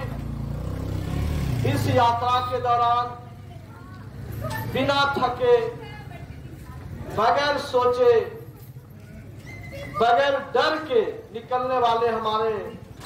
इस यात्रा के दौरान बिना थके, बगैर सोचे, बगैर डर के निकलने वाले हमारे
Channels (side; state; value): both; identical; correlation 1.00